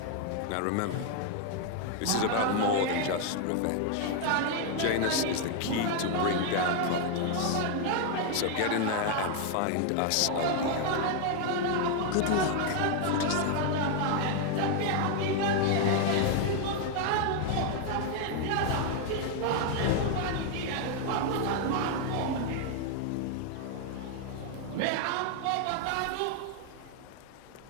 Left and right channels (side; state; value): both; different; correlation 0.00